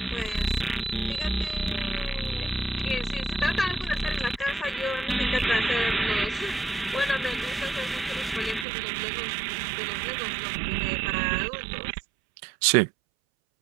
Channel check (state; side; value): drops out; left; at 8.7 s